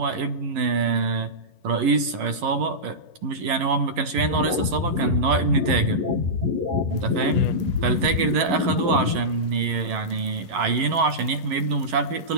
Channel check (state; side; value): late; left; 11 ms